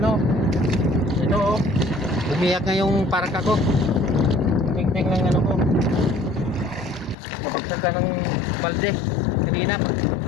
oh. Umiyak nga yung parka ko. Tingting ng ko. Kapagsak ka ng balde. Kanina.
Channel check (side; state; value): right; drops out; at 7.2 s